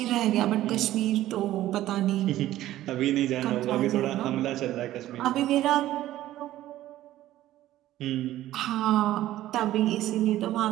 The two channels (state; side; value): quieter; left; 14.3 dB